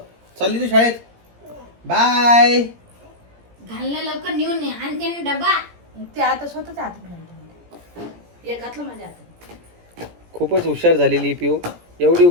चालली तू शाळेत. बाय. घालणं लवकर नेऊन ये. आणि त्याने डबा. ते आता स्वतःच्या हातात घालतो. एक घातलं माझ्या हातात. खूपच हुशार झालेली पिऊ. एवढी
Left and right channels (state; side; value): late; left; 17 ms